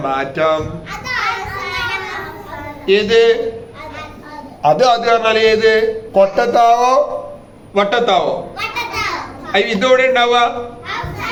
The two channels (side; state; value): both; identical; correlation 1.00